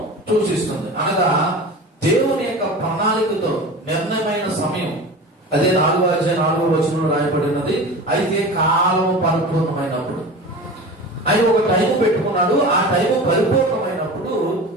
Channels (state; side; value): normal; both; correlation 0.33